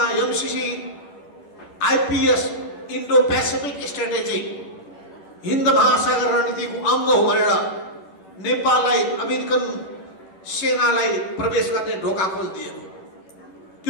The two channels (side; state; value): right; late; 11 ms